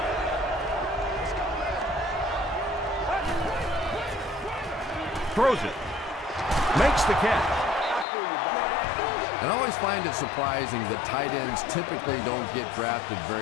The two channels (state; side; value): drops out; right; at 8.1 s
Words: Throws it. Makes the catch. And I always find it surprising that tight ends typically don't get drafted